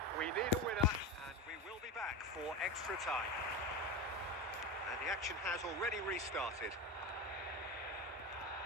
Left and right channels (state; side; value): normal; both; correlation 0.22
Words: we need a winner. And we will be back for extra time. And the action has already restarted.